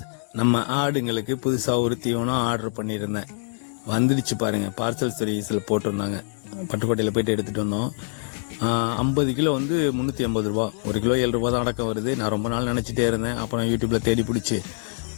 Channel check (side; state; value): right; silent; 62 dB below the other